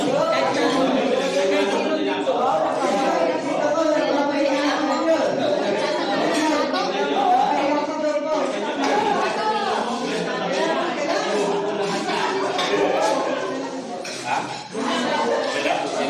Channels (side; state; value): both; identical; correlation 1.00